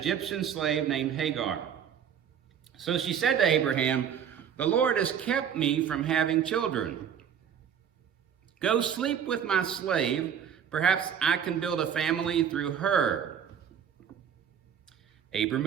slave named Hagar. So she said to Abraham, "The Lord has kept me from having children. Go sleep with my slave. Perhaps I can build a family through her." Abram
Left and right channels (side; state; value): left; quieter; 8.3 dB